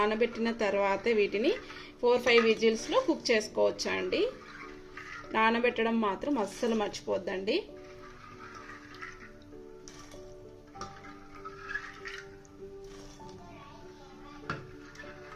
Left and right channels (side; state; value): both; identical; correlation 1.00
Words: తర్వాతే వీటిని 4-5 విజిల్స్లో కుక్ చేసుకోవచ్చు అండి. నానబెట్టడం మాత్రం అస్సలు మర్చిపోద్దండి.